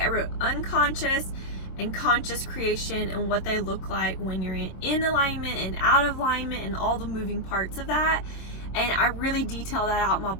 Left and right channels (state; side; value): late; right; 24 ms